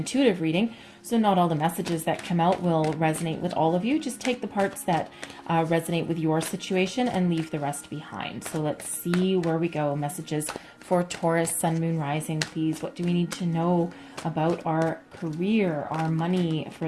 reading, so not all the messages that come out will resonate with all of you. Just take the parts that resonate with your situation and leave the rest behind. So let's see where we go. Messages for Taurus, Sun, Moon, Rising, please. What do we need to know about our career, our money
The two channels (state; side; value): identical; both; correlation 1.00